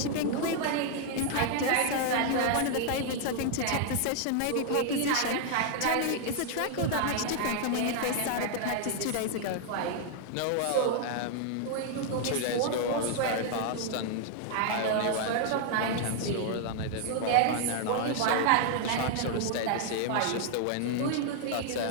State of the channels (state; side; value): different; both; correlation 0.00